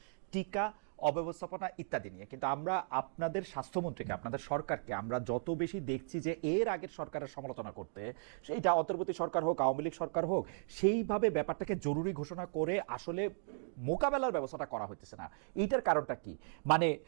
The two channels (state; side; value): silent; left; digital silence